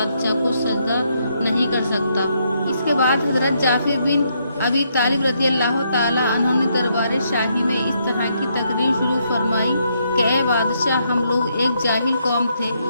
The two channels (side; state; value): both; inverted; correlation -0.75